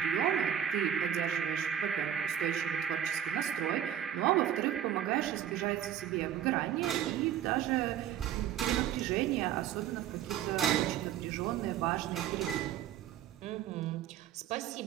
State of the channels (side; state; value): left; quieter; 10.3 dB